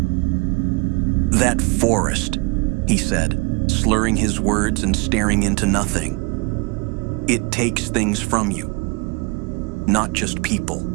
"That forest," he said, slurring his words and staring into nothing. "It takes things from you. Not just people.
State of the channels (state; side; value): quieter; left; 28.1 dB